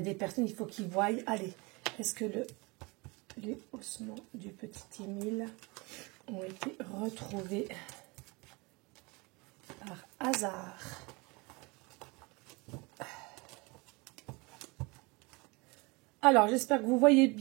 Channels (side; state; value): left; quieter; 26.6 dB